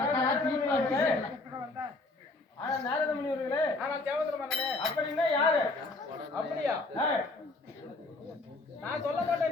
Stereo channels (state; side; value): quieter; right; 3.2 dB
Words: ஆனா நாரத முனிவர்களே ஆனா தேவேந்திர மன்னனே அப்படின்னா யாரு? அப்படியா நான் சொல்ல